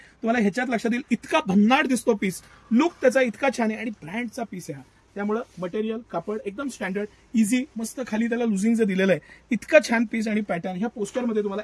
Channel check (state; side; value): identical; both; correlation 1.00